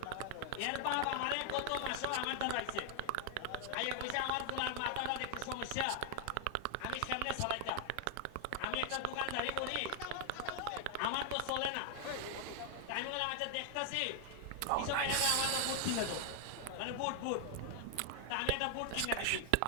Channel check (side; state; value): both; different; correlation 0.00